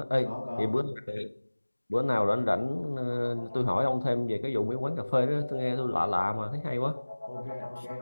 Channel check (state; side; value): inverted; both; correlation -1.00